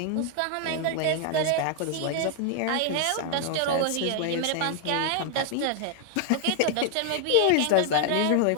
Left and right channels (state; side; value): different; both; correlation 0.00